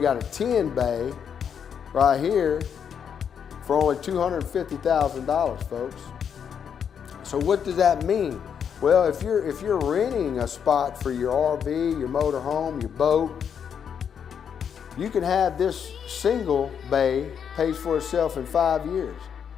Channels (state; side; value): quieter; right; 7.7 dB